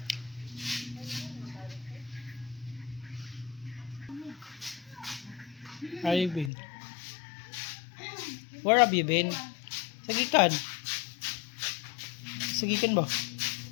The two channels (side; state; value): right; drops out; at 6.5 s